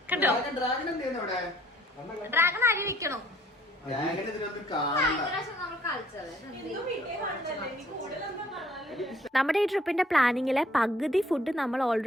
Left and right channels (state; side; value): normal; both; correlation 0.60